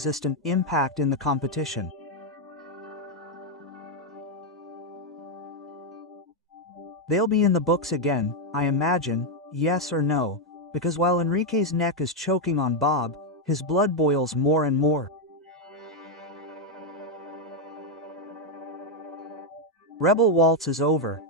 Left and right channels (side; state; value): both; normal; correlation 0.02